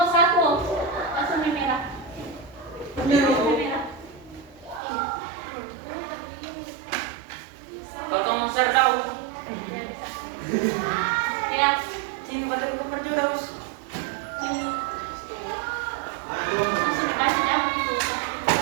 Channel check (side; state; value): left; drops out; at 4.8 s